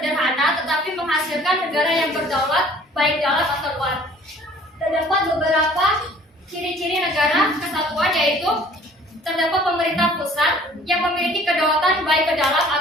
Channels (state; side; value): normal; both; correlation 0.52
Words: tetapi menghasilkan negara yang berdaulat baik dalam atau luar. Terdapat beberapa ciri-ciri negara kesatuan yaitu terdapat pemerintah pusat yang memiliki kedaulatan ke dalam